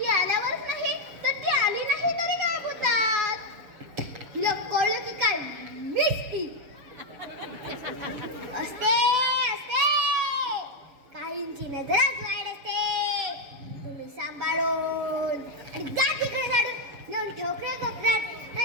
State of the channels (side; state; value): left; late; 7.1 ms